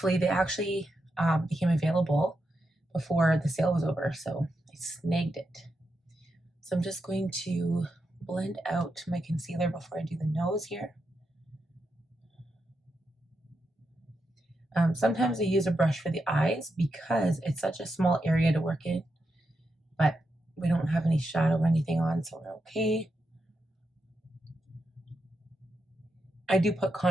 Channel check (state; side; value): normal; both; correlation 0.85